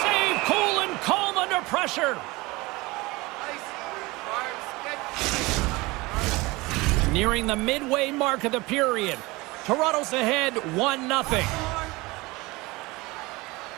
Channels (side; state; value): left; quieter; 22.5 dB